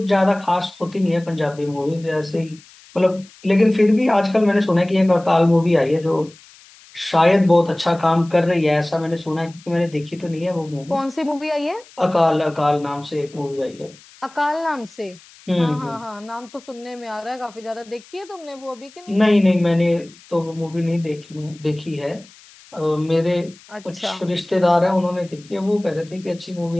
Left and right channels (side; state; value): left; noise; hiss, 24 dB below the sound